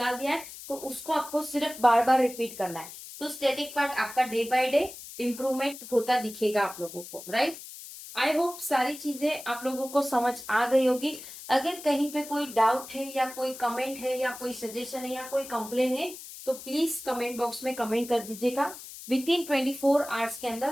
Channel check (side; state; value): left; noise; hiss, 13 dB below the sound